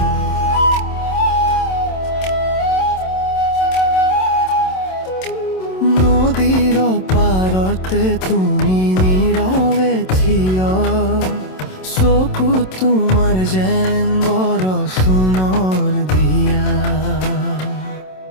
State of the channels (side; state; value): right; late; 27 ms